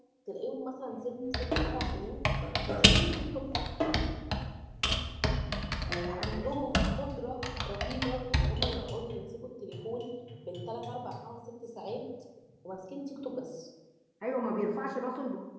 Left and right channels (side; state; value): both; identical; correlation 1.00